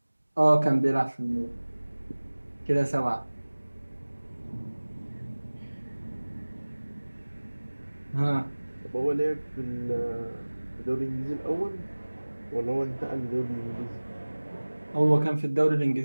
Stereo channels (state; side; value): inverted; both; correlation -1.00